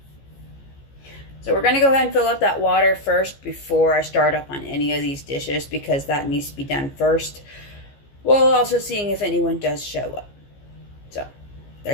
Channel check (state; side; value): late; right; 15 ms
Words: So we're going to go ahead and fill up that water first before I start up on any of these dishes, because that needs to be done first. While also seeing if anyone does show up. So,